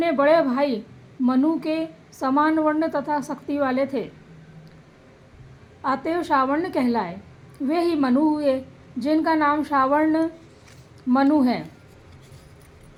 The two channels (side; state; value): both; identical; correlation 1.00